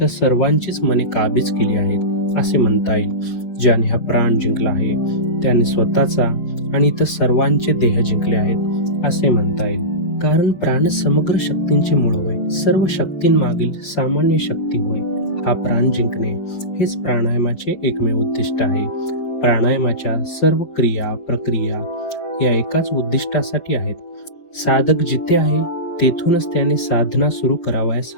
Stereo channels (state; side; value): late; right; 5.9 ms